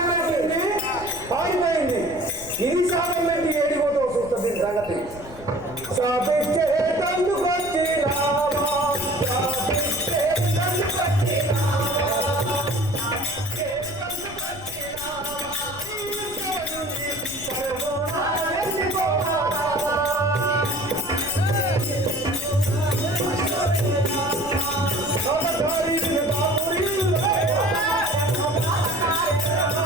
పారిపోయింది. ఇది సాగండి ఏడిపోతావు చూస్తుంది సంగతి. సాపించే తందుకొచ్చినా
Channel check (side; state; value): left; noise; rumble, 17 dB below the sound